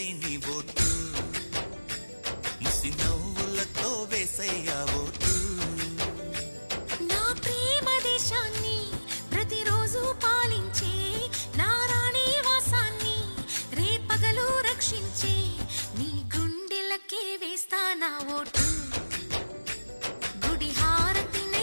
నీ ఓటు, ముసి నవ్వులతో వేసయ్యా ఓటు. నా ప్రేమ దేశాన్ని ప్రతిరోజు పాలించే నా రాణి వాసాన్ని రేపగలు రక్షించే నీ గుండెలకే వేస్తా నా ఓటు, గుడి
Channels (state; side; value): inverted; both; correlation -1.00